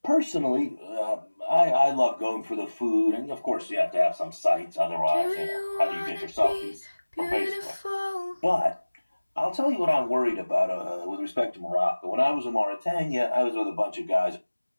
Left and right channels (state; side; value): inverted; both; correlation -1.00